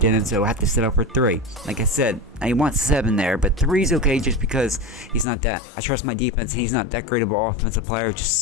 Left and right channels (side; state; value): right; drops out; at 5.2 s